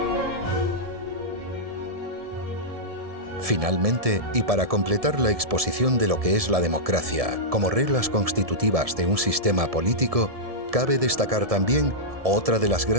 Finalmente, y para completar la exposición de lo que es la democracia como reglas constitutivas de un sistema político, cabe destacar también otra de las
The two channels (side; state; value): left; late; 1.7 ms